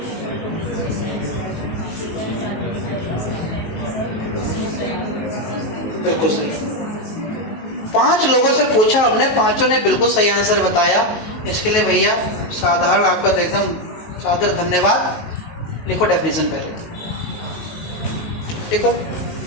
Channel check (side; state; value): right; late; 19 ms